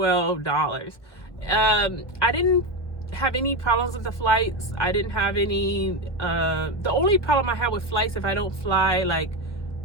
I didn't have any problems with the flights. I didn't have any the only problem I have with flights, if I don't fly like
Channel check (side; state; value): right; late; 1.3 ms